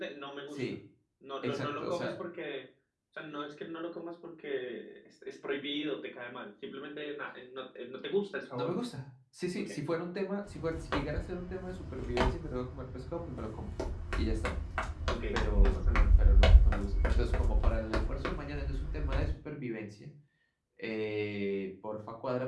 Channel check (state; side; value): identical; both; correlation 1.00